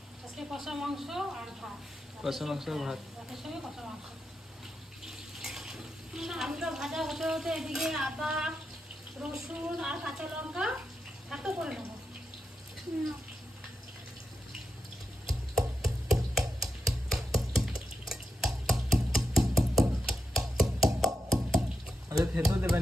আজকে কষা মাংস আর ভাত। কষা মাংস আর ভাত। ভাতের সঙ্গে কষা মাংস। আলুটা ভাজা হতে হতে এদিকে আদা, রসুন আর কাঁচা লঙ্কা এত করে নেবো। আচ্ছা, থেতো দেবে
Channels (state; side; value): normal; both; correlation 0.87